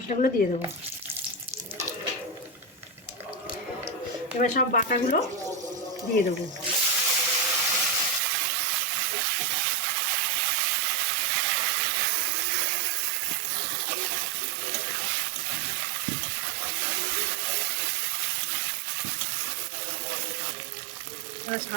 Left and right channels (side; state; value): left; drops out; at 8.2 s